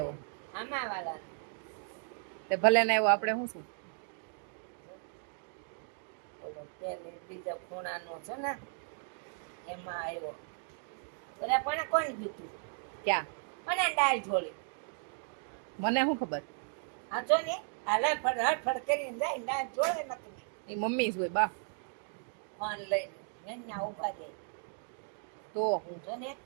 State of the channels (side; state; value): left; silent; 54 dB below the other